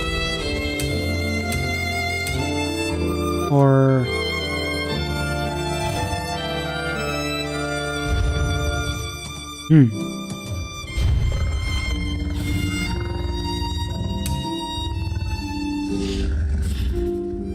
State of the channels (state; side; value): identical; both; correlation 1.00